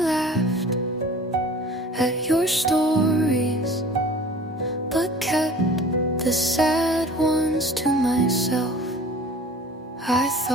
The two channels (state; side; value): normal; both; correlation 0.44